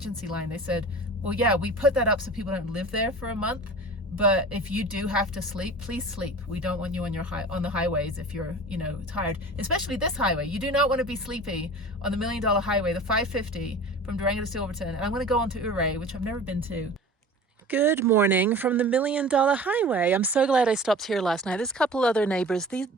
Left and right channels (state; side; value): normal; both; correlation 0.39